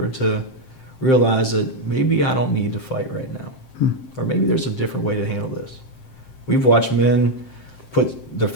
to realize that maybe I don't need to fight right now, or maybe there's a different way to handle this? We've watched men put their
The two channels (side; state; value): right; late; 7.7 ms